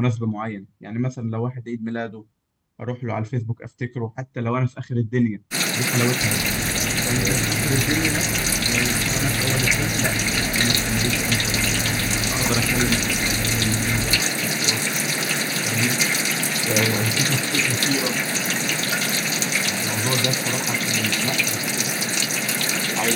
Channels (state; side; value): identical; both; correlation 1.00